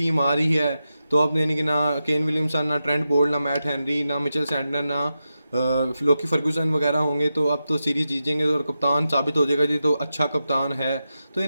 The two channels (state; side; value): inverted; both; correlation -0.90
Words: आ रही है। तो अब यानी कि ना केन विलियमसन, ना ट्रेंट बोल्ट, ना मैट हेनरी, ना मिचेल सैंटनर, ना लोकी फर्गूसन वगैरह होंगे, तो अब तो सीरीज जीत जाएंगे और कप्तान साबित हो जाएगा जी, तो अच्छा कप्तान है। तो